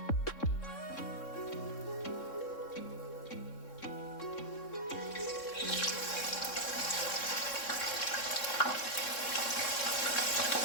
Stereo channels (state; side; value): late; right; 3.6 ms